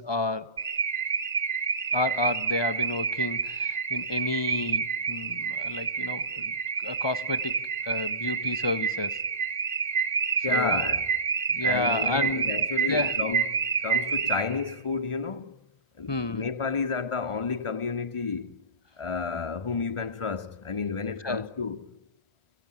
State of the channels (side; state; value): right; late; 1.4 ms